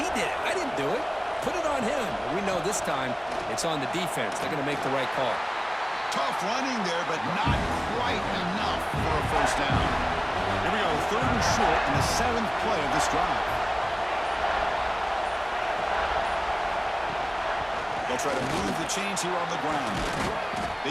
did it. I didn't do it. Put it on him. We know this time it's on the defense. They're going to make the right call. Tough running there, but not quite enough for a 1st down. Here we go, 3rd and short in the 7th play of this drive. They'll try to move the chains here on the ground.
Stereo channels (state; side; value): identical; both; correlation 1.00